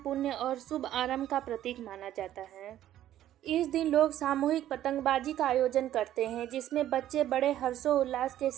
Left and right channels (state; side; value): quieter; left; 12.4 dB